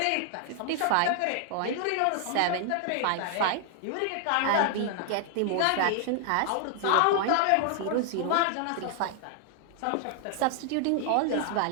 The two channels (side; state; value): both; different; correlation 0.00